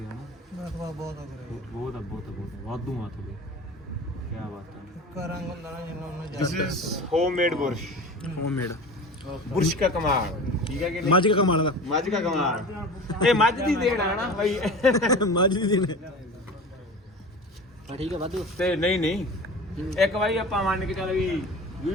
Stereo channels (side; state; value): both; normal; correlation 0.35